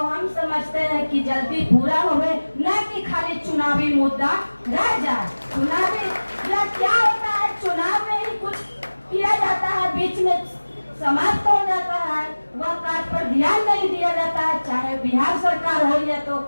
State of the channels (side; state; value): both; inverted; correlation -1.00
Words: समझते हैं कि जल्दी पूरा होवे, न कि खाली चुनावी मुद्दा रह जाए। चुनावी या क्या होता है, चुनाव में ही कुछ किया जाता है, बीच में समाप्त हो जाता है, वह कार्य पर ध्यान नहीं दिया जाता है। चाहे बिहार सरकार हो या तो